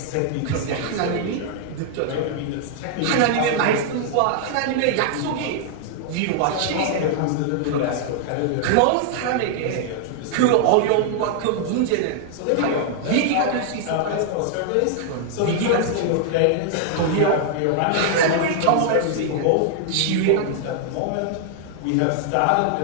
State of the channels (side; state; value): both; different; correlation -0.01